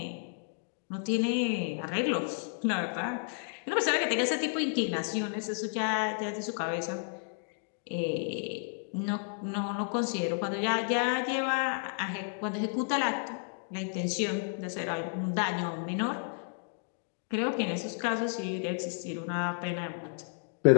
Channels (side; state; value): right; silent; digital silence